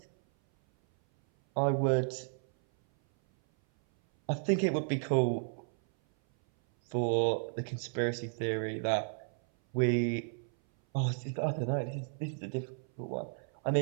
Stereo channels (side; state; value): left; silent; 56 dB below the other